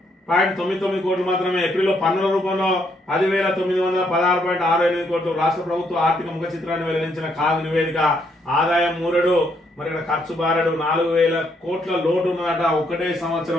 కోట్లు మాత్రమే. ఏప్రిల్లో పన్నుల రూపంలో 10,916.68 కోట్లు. రాష్ట్ర ప్రభుత్వ ఆర్థిక ముఖ చిత్రాన్ని వెల్లడించిన కాగ్ నివేదిక. ఆదాయం మూరడు, మరి ఇక్కడ ఖర్చు బారడు, 4,000 కోట్ల లోటు ఉన్నదట ఒకటే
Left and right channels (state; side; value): normal; both; correlation 0.73